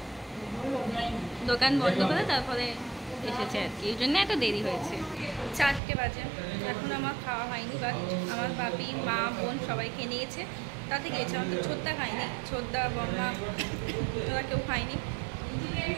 দোকান বন্ধ করে তারপরে এসেছে আর কি, এই জন্য এত দেরি হয়েছে। 4টে বাজে, এখন আমার খাওয়া হয়নি, বাট আমার বাপি, মা, বোন সবাই খেয়ে নিয়েছে, তাতে গিয়েছে। আমার তো ছোটদা খায়নি, ছোটদা, বম্মা ওরা কেউ খায়নি।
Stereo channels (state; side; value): drops out; left; at 5.8 s